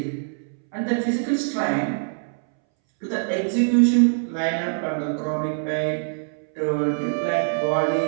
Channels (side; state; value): left; silent; 63 dB below the other